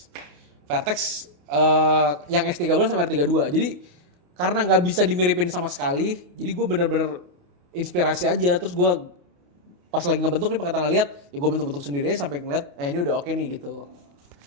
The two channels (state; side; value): late; left; 28 ms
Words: yang S13 sama R32. Jadi karena nggak bisa dimiripin sama sekali, jadi gue bener-bener inspirasi aja. Terus gue pas lagi ngebentuk nih pakai tangan lihat, ya gue bentuk-bentuk sendiri aja sampai ngeliat, ini udah oke nih gitu.